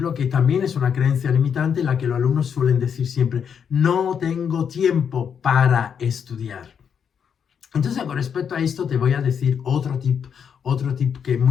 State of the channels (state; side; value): quieter; right; 7.4 dB